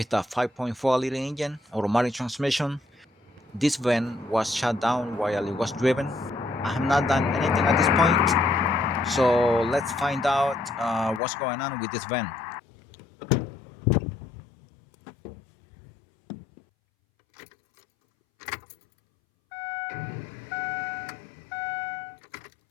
a 5.4 liter engine, automatic transmission. This van was shut down while it was driven. I have not done anything at this point, so let's find out what's going on with this van.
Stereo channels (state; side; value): drops out; right; at 11.2 s